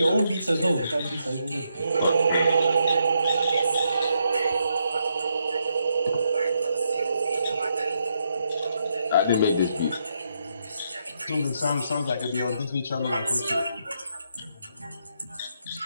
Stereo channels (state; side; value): inverted; both; correlation -0.79